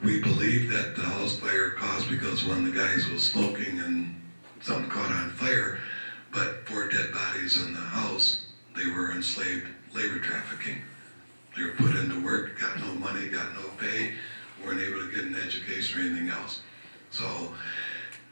we believe that the house fire caused because one of the guys was smoking and something caught on fire, but 4 dead bodies in the house, they were enslaved labor trafficking. They were put into work, got no money, got no pay, weren't able to get an education or anything else. So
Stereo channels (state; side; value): inverted; both; correlation -1.00